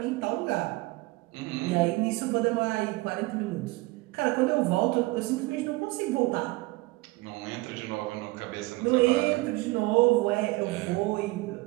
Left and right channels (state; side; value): quieter; left; 22.1 dB